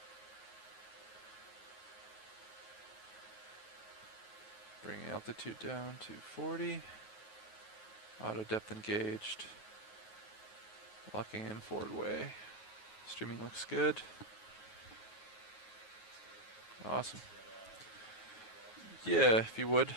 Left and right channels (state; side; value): late; right; 9.4 ms